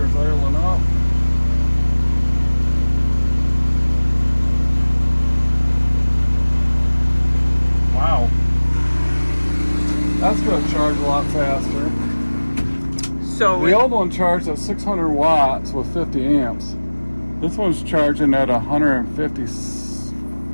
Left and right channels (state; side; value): inverted; both; correlation -1.00